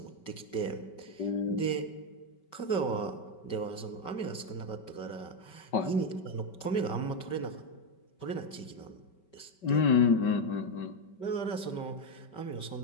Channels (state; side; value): late; right; 5.2 ms